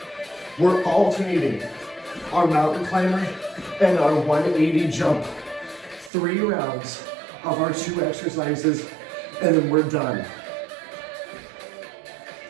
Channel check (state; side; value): drops out; left; at 6.1 s